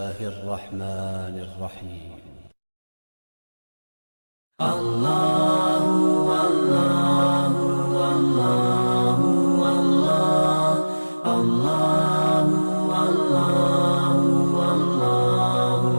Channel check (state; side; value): inverted; both; correlation -1.00